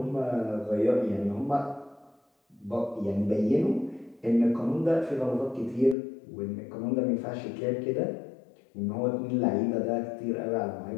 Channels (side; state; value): right; drops out; at 6.0 s